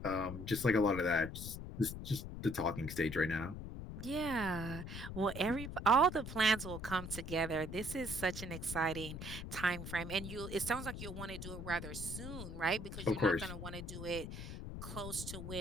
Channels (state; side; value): noise; left; rumble, 8 dB below the sound